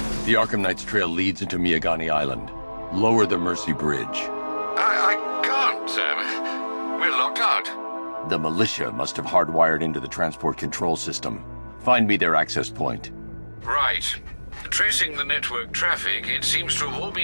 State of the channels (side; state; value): both; inverted; correlation -1.00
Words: the Arkham Knight's trail leads into Miagani Island. Lower the Mercy Bridge. I can't, sir. We're locked out. The militia must have hardwired into the transport control system. Find me their access point. Right. Tracing the network traffic, it seems to have all